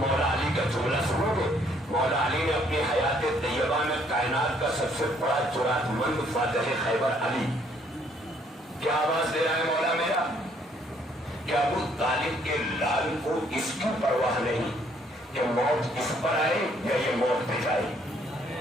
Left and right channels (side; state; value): both; normal; correlation 0.65